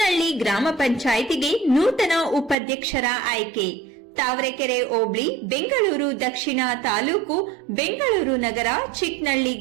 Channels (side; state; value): left; drops out; at 2.6 s